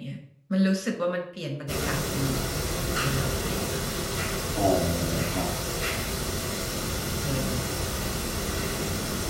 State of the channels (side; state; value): both; identical; correlation 1.00